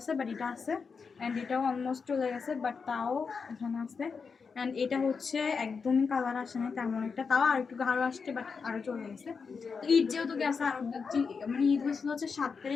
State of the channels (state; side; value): quieter; right; 5.4 dB